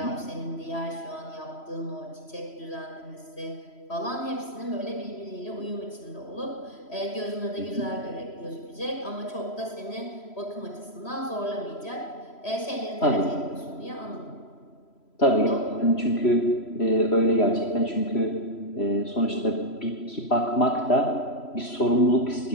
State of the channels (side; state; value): right; late; 3.0 ms